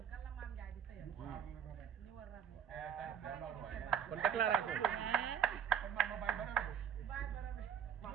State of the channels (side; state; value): left; quieter; 8.2 dB